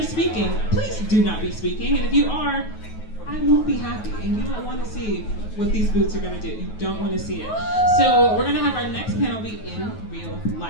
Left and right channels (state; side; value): late; right; 9.3 ms